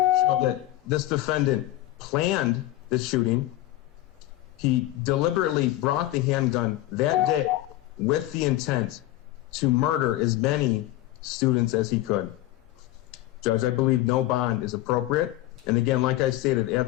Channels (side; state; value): right; quieter; 15.7 dB